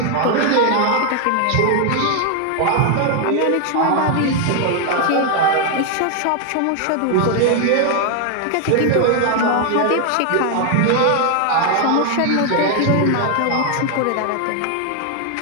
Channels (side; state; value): both; different; correlation 0.00